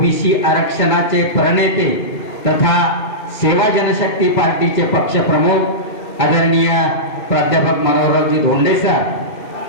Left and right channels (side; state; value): right; late; 2.0 ms